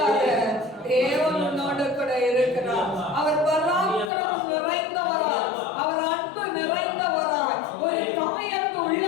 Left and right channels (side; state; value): right; drops out; at 4.1 s